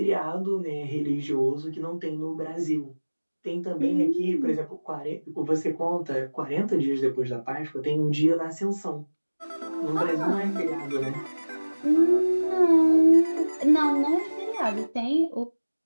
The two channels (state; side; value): inverted; both; correlation -1.00